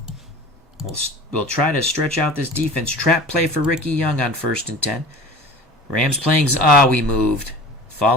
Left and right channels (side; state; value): both; normal; correlation 0.39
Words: We'll try to stretch out this defense. Trap play for Ricky Young on 1st and 10. Rams playing. We moved.